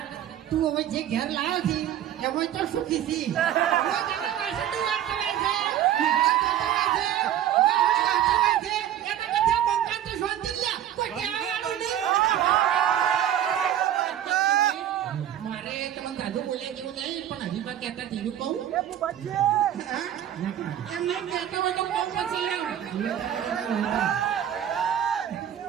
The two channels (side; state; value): left; quieter; 11.1 dB